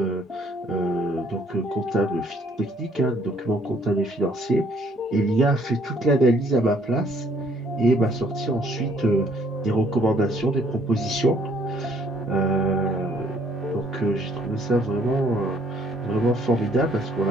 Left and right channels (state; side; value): normal; both; correlation 0.63